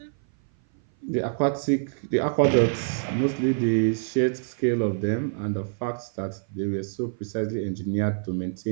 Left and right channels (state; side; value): silent; left; 57 dB below the other